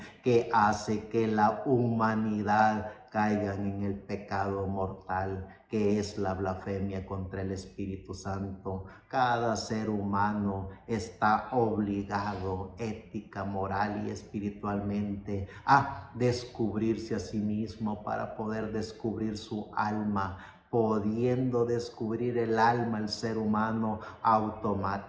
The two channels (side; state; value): both; identical; correlation 1.00